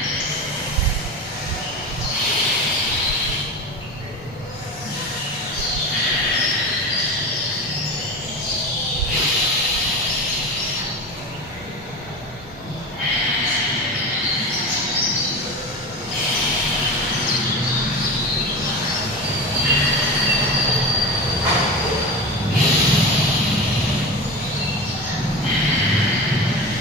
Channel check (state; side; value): normal; both; correlation 0.27